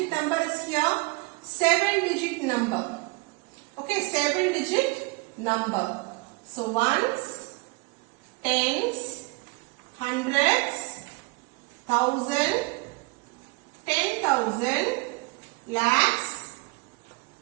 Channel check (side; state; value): left; quieter; 27.2 dB